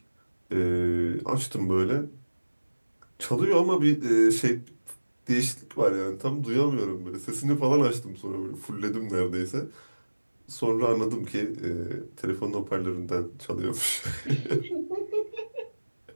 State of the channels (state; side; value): inverted; both; correlation -1.00